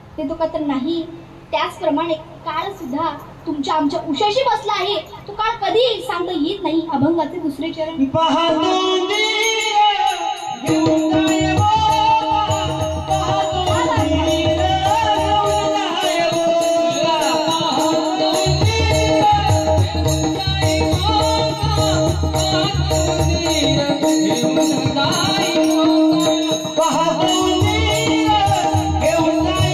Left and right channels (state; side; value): identical; both; correlation 1.00